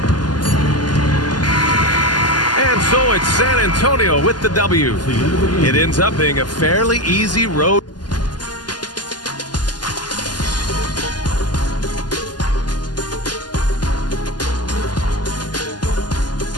And so it's San Antonio with the W. It ends up being a fairly easy road.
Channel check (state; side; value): late; right; 0.70 ms